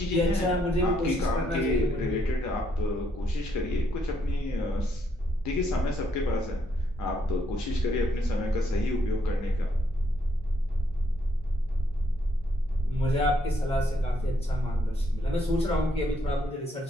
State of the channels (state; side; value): normal; both; correlation 0.73